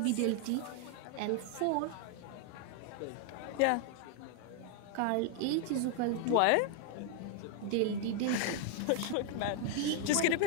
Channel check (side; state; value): both; different; correlation 0.00